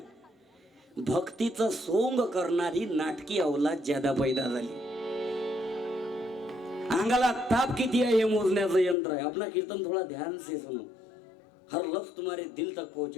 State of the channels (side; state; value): right; drops out; at 9.0 s